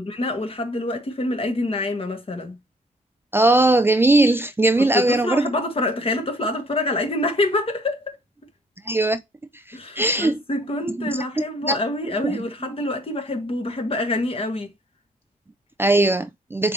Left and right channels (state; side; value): normal; both; correlation 0.60